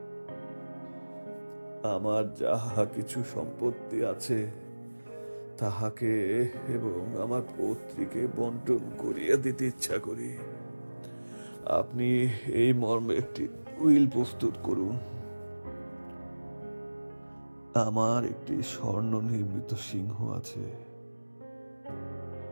আমার যাহা কিছু সম্পত্তি আছে তাহাকে এবং আমার পৌত্রীকে বন্টন করিয়া দিতে ইচ্ছা করি। আপনি এই মর্মে একটি উইল প্রস্তুত করুন। আমার একটি স্বর্ণ নির্মিত সিংহ আছে।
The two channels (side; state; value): both; inverted; correlation -1.00